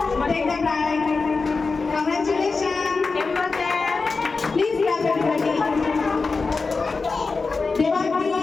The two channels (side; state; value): right; quieter; 4.3 dB